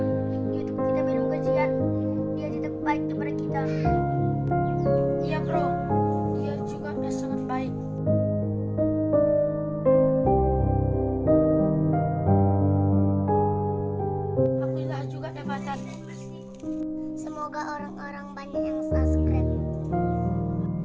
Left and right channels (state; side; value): identical; both; correlation 1.00